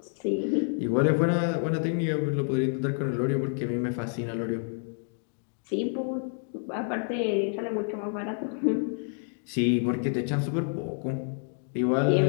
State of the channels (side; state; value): right; silent; 59 dB below the other